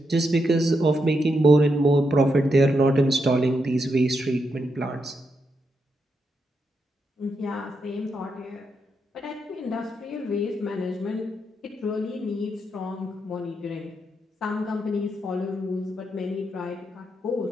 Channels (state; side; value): normal; both; correlation 0.82